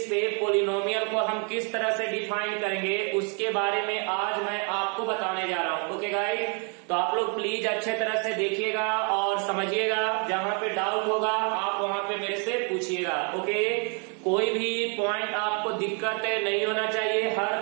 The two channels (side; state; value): left; quieter; 38.0 dB